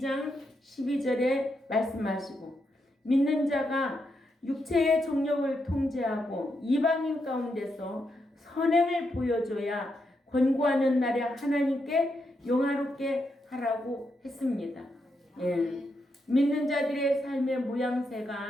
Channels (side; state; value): both; normal; correlation 0.82